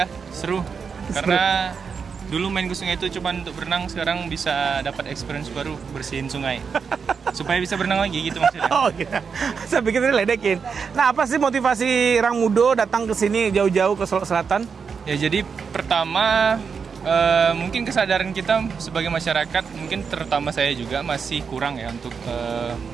seru. Karena dulu main ke sungai itu cuma untuk berenang, sekarang bisa dapat experience baru bersihin sungai. Supaya bisa berenang lagi gitu maksudnya. Oh iya, saya pikir ini ledekin. Nah, apa sih motivasi Ramudo datang ke sini jauh-jauh ke Solo Selatan? Ya jadi pertama mungkin kesadaran kita sebagai masyarakat, mungkin terutama saya juga masih kurang ya untuk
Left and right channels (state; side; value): quieter; left; 5.9 dB